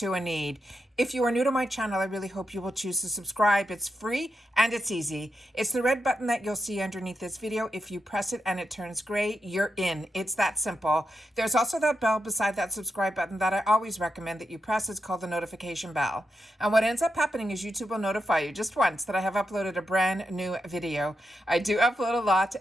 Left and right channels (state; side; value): normal; both; correlation 0.86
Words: a need. If you are new to my channel, I really hope you will choose to subscribe. It's free and it's easy. It's the red button that you'll see underneath this video. If you press it and it turns gray, you're in. It's that simple. There's also that bell beside that subscribe button that I always recommend that you press. It's called the notification bell. And what ends up happening is YouTube will notify you just once that I have uploaded a brand new video. I do upload a lot